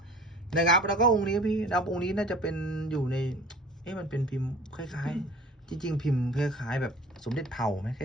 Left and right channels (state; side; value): normal; both; correlation 0.45